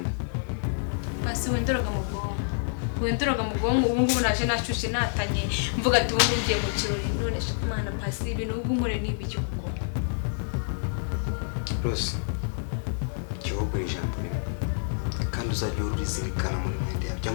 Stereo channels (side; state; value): right; silent; digital silence